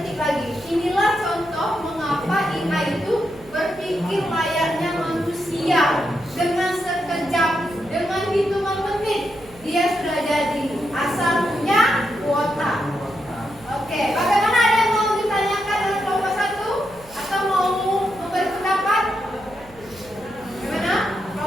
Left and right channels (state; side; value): noise; right; hum, 24 dB below the sound